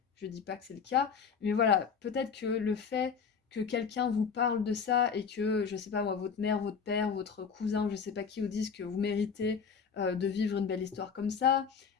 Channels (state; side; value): quieter; right; 6.2 dB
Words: Je dis pas que c'est le cas, mais voilà, peut-être que le fait que quelqu'un vous parle de ça et que, je sais pas moi, votre mère, votre père, votre cousin, ou je sais pas qui vous dise que vous méritez de vivre une belle histoire comme ça,